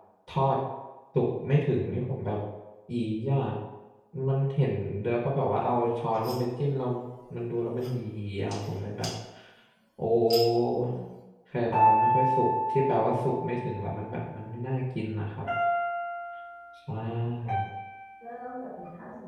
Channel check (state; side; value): identical; both; correlation 1.00